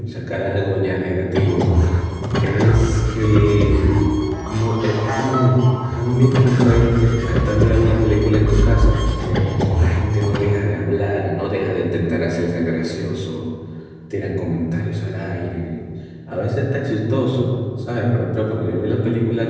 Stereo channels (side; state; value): both; identical; correlation 1.00